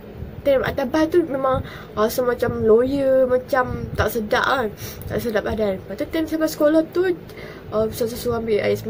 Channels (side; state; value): both; identical; correlation 1.00